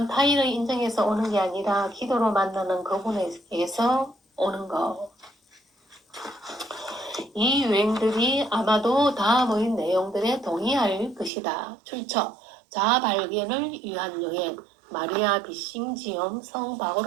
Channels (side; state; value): left; drops out; at 11.3 s